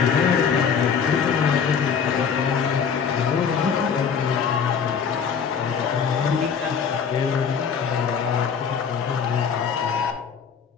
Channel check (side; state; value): right; quieter; 6.7 dB